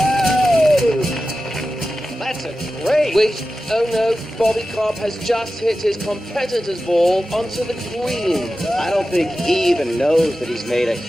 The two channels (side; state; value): both; normal; correlation 0.94